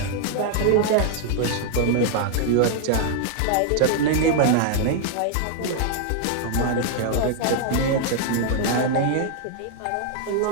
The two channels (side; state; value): both; different; correlation -0.01